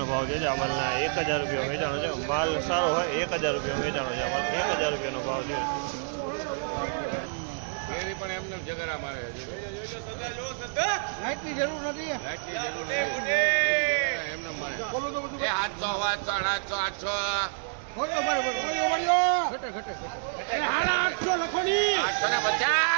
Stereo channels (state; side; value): silent; left; digital silence